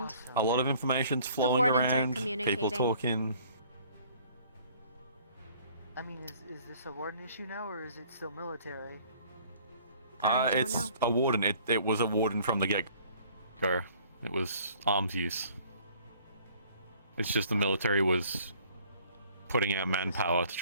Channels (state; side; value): inverted; both; correlation -0.56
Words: A lot of information's The flowing wardens aren't around. communicating. People talking. I mean, is this a warden issue now, or is it still military? I don't It's know. a warden. It was a warden from the get-go. It was arms use. It's just the military was putting out manpower to